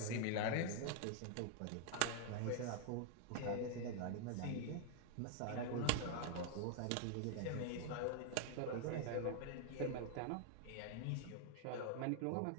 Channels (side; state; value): both; different; correlation 0.00